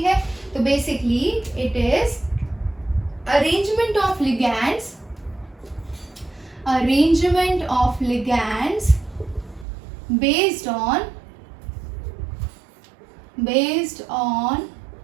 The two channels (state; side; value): drops out; left; at 9.7 s